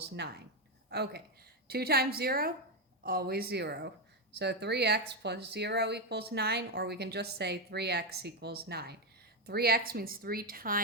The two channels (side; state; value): both; normal; correlation 0.07